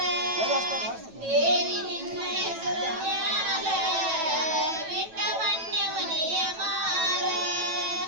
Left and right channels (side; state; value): left; late; 9.1 ms